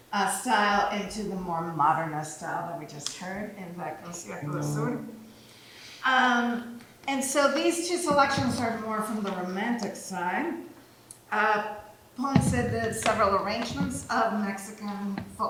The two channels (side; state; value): both; identical; correlation 1.00